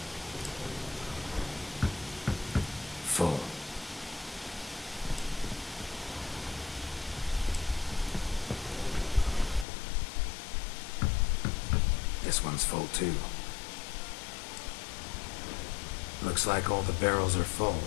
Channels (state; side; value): drops out; right; at 9.7 s